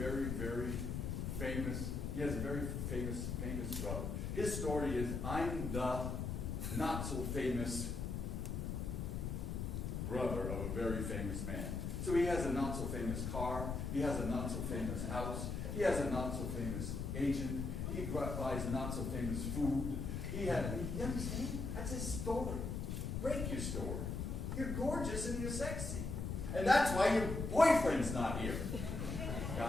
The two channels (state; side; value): noise; left; rumble, 3 dB below the sound